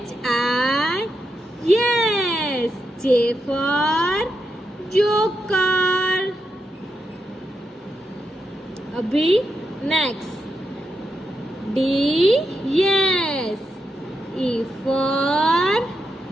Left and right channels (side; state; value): both; normal; correlation 0.85